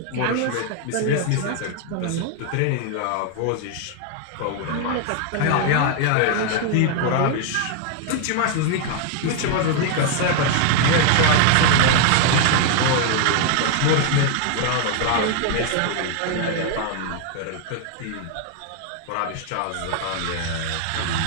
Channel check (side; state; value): both; different; correlation 0.00